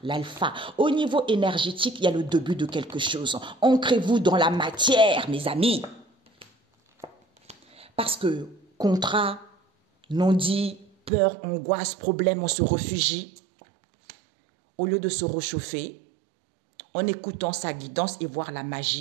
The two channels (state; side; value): drops out; left; at 11.1 s